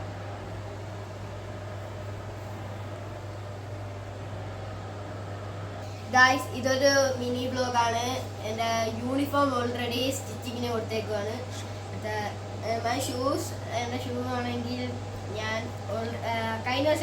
ഗൈസ് ഇതൊരു മിനി ബ്ലോഗാണ്. എൻ്റെ യൂണിഫോം ഓൾറെഡി സ്റ്റിച്ചിങ്ങിന് കൊടുത്തേക്കുവാണ്. മൈ ഷൂസ്, എൻ്റെ ഷൂ ആണെങ്കിൽ ഞാൻ കഴിഞ്ഞ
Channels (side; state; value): both; identical; correlation 1.00